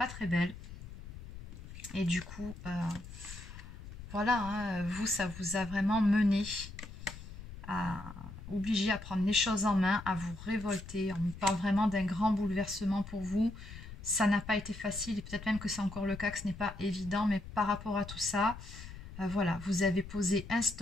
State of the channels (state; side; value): noise; left; rumble, 13 dB below the sound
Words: très belles. Et du coup, voilà, hein, vous, ça vous a vraiment mené à obligé à prendre les choses en main, à vous révolter. On me parle vraiment d'un grand bouleversement pour vous. Ça n'a pas été facile, et peut-être même que c'est encore le cas, que ce n'est pas évident, mais par rapport à tout ça, Voilà, vous avez posé un